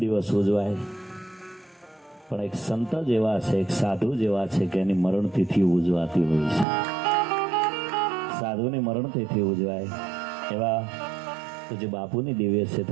ઉજવાય પણ એક સંત જેવા છે એક સાધુ જેવા છે કે એની મરણ તિથિ ઉજવાતી હોય છે સાધુની મરણ તિથિ ઉજવાય એવા પૂજ્ય બાપુની દિવ્ય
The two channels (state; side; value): drops out; left; at 6.7 s